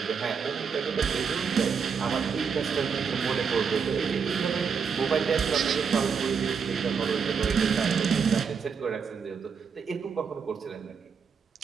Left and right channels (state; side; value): quieter; left; 6.1 dB